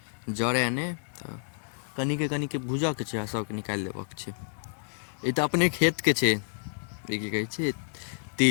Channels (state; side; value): silent; right; digital silence